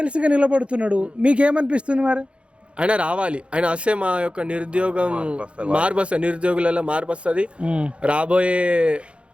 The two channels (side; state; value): left; late; 0.059 ms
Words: నిలబడుతున్నాడు, మీకు ఏమనిపిస్తుంది మరి? ఆయన రావాలి, ఆయన వస్తే మా యొక్క నిరుద్యోగం మార్పు వస్తుంది, నిరుద్యోగులలో మార్పు వస్తుంది. రాబోయే